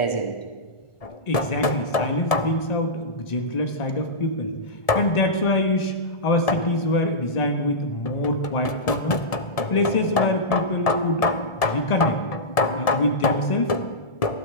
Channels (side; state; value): right; late; 1.7 ms